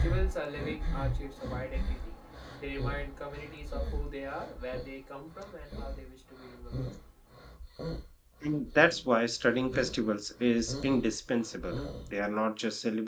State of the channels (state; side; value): identical; both; correlation 1.00